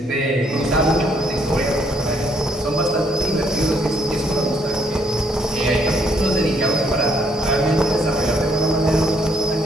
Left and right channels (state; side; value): normal; both; correlation 0.69